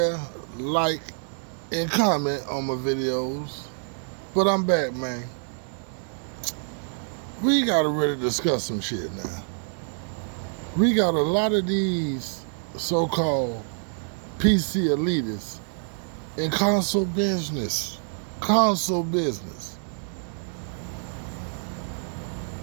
like, and comment on my videos. But I'm back, man. We gotta really discuss some shit now. We got a lot of these so-called PC elitists in console business. Console business.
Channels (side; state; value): left; silent; 60 dB below the other